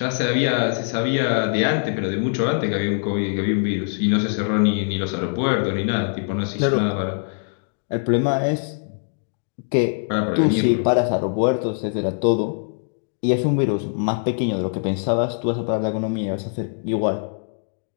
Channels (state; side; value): silent; right; digital silence